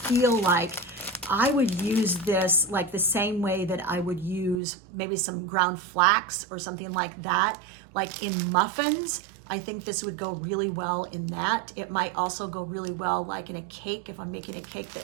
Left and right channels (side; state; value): left; drops out; at 4.6 s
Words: like I would use this like the same way that I would use maybe some ground flax or something like that, like in muffins. I think this would go really well in that. It might also go really well like in a cake, if I'm making a cake